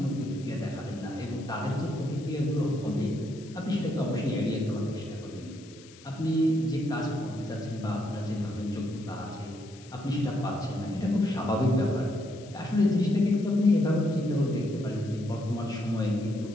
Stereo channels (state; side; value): noise; left; hiss, 22 dB below the sound